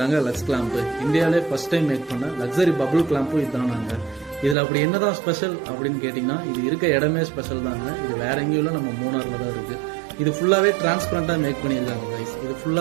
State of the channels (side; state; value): left; drops out; at 4.5 s